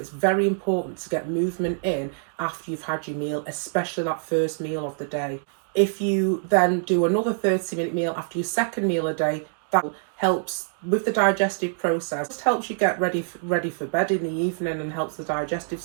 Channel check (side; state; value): left; silent; digital silence